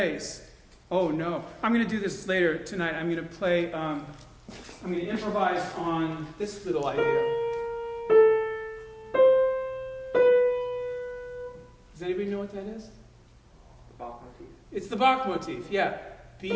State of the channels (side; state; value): both; identical; correlation 1.00